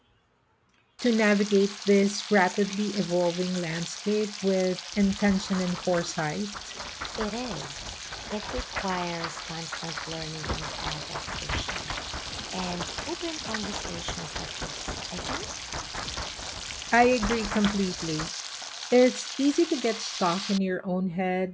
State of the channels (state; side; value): identical; both; correlation 1.00